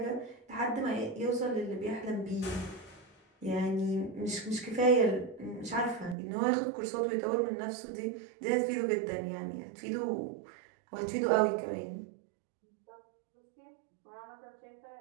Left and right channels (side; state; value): left; drops out; at 6.2 s